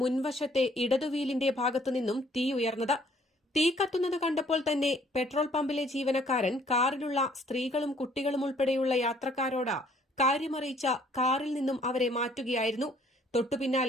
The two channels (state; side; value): normal; both; correlation 0.61